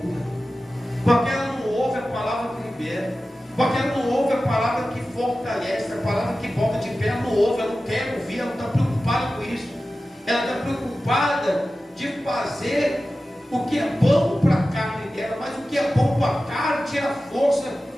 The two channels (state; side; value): normal; both; correlation 0.95